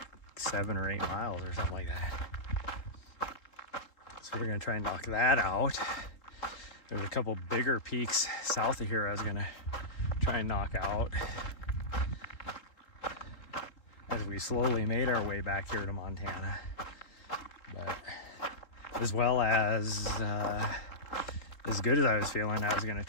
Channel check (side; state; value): right; late; 3.7 ms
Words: 7 or 8 miles or something like that. So we're gonna try and knock that out. There's a couple bigger peaks south of here I was gonna try and knock out as we slowly made our way back here to Montana. But as well as good as I was feeling, I was gonna